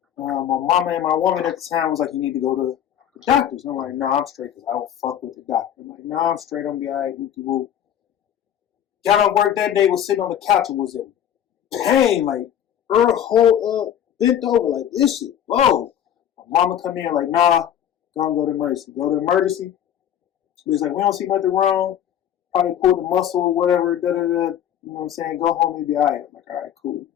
My mama and my woman at the time was like, you need to go to the doctors. And I'm like, no, I'm straight because I don't fuck with the doctor. I'm like, no, I'm straight. I'm going to be all right. Whoop-de-whoop. Got off work that day, was sitting on the couch and was in pain, like her whole bent over like this shit. Whoa. My mama come in like, nah, go to emergency. Go to emergency. It's like, we don't see nothing wrong. Probably pulled the muscle or whatever. You know what I'm saying? Go home and be all right. I'm like, all right, cool.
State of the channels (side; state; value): right; quieter; 10.0 dB